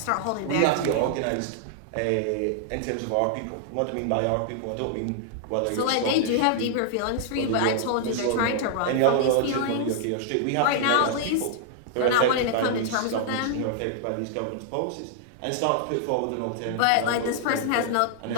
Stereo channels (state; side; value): different; both; correlation -0.01